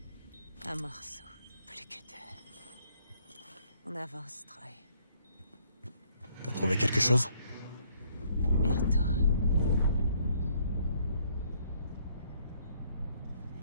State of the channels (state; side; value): inverted; both; correlation -0.66